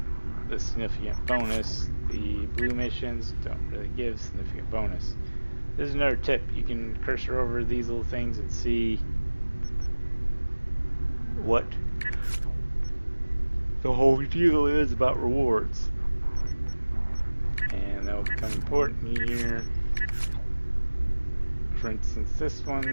the significant bonus. The blue missions don't really give significant bonus. This is another tip. You can cursor over these little things and see what the whole deal is about rewards. And that will become important here. For instance, this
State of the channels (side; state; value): both; inverted; correlation -1.00